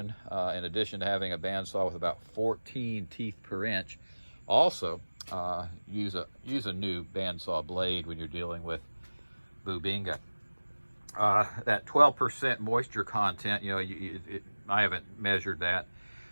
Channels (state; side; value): inverted; both; correlation -1.00